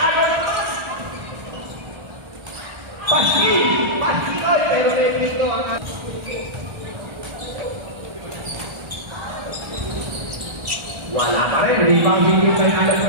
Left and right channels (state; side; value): late; left; 1.3 ms